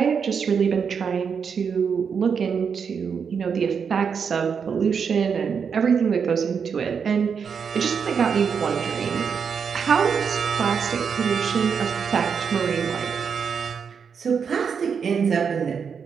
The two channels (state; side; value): quieter; left; 6.5 dB